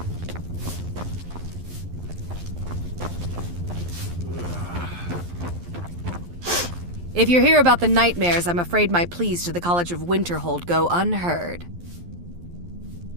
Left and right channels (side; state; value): left; late; 11 ms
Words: If you're here about the nightmares, I'm afraid my pleas to the College of Winterhold go unheard.